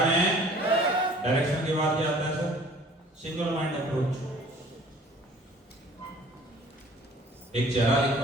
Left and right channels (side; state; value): both; normal; correlation 0.51